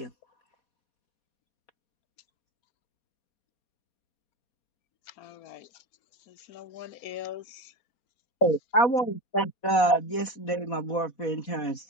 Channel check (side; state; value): right; late; 4.1 ms